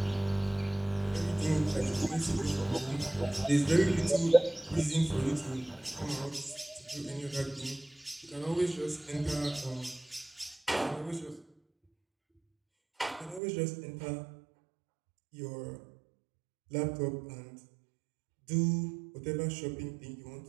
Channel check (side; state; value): left; drops out; at 13.4 s